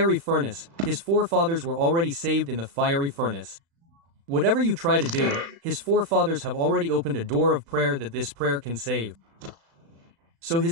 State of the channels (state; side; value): late; left; 36 ms